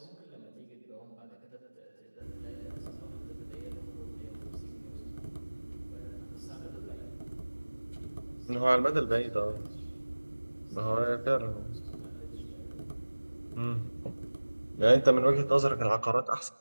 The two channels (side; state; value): both; inverted; correlation -1.00